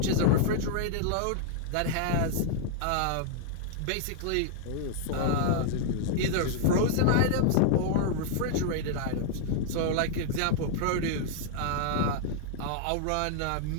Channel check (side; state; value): both; different; correlation -0.01